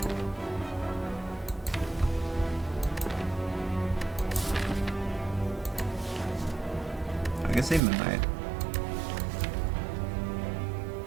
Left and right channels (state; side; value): drops out; left; at 7.8 s